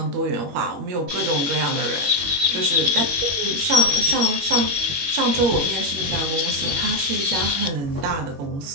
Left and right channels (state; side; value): late; left; 21 ms